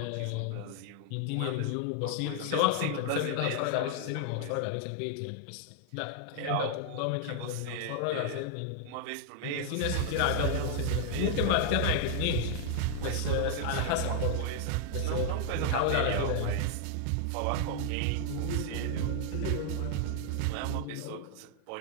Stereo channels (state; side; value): different; both; correlation 0.00